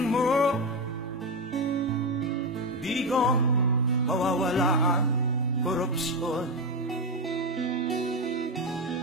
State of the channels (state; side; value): normal; both; correlation 0.10